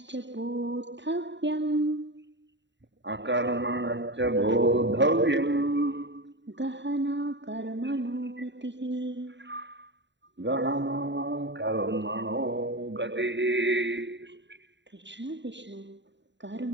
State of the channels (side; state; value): left; late; 0.52 ms